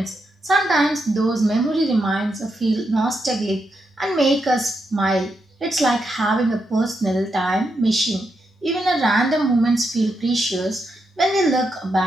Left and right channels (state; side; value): normal; both; correlation 0.83